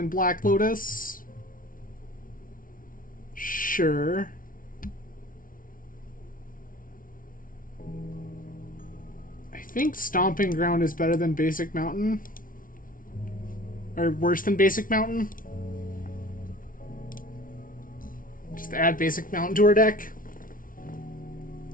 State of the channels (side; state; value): right; late; 0.39 ms